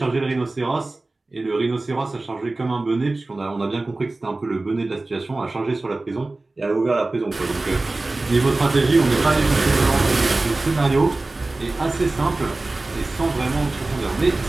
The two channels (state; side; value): quieter; left; 3.1 dB